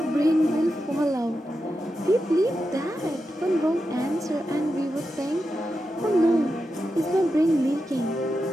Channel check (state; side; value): normal; both; correlation 0.89